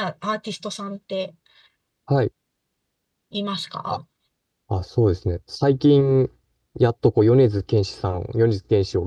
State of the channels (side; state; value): both; identical; correlation 1.00